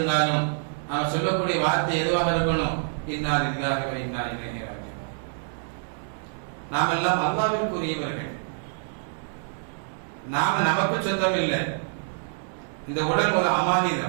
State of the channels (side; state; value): left; silent; 61 dB below the other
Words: நாம் சொல்லக்கூடிய வார்த்தை எதுவாக இருக்கணும்? இன்னா லில்லாஹி வ இன்னா இலைஹி ராஜிஊன். நாம் எல்லாம் அல்லாஹ்விற்குரியவர்கள். நாம நமக்கு சொந்தம் இல்லை. இந்த உடல் ஒரு